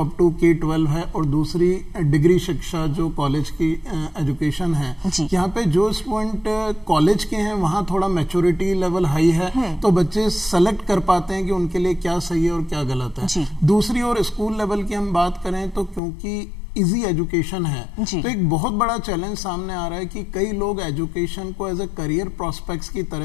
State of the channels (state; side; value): drops out; right; at 16.0 s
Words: अप टू K-12 है और दूसरी डिग्री शिक्षा जो कॉलेज की एजुकेशन है। यहाँ पे जो स्टूडेंट कॉलेज के हैं वहाँ थोड़ा मैच्योरिटी लेवल हाई है, तो बच्चे सेलेक्ट कर पाते हैं कि उनके लिए क्या सही है और क्या गलत है। दूसरी ओर स्कूल लेवल की हम बात करें तो क्योंकि इजी एजुकेशन है तो एक बहुत बड़ा चैलेंज सामने आ रहा है कि कई लोग एजुकेशन को एज ए करियर प्रोस्पेक्ट्स की